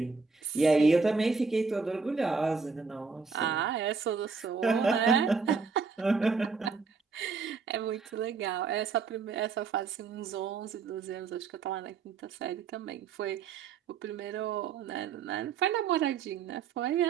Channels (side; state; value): left; quieter; 5.1 dB